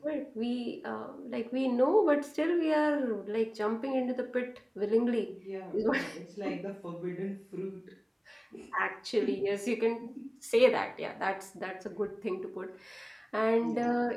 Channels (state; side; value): identical; both; correlation 1.00